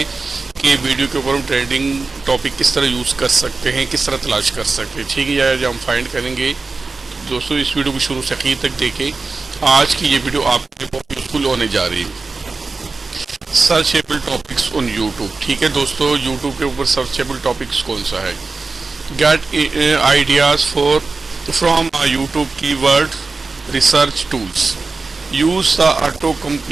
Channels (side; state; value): left; quieter; 4.0 dB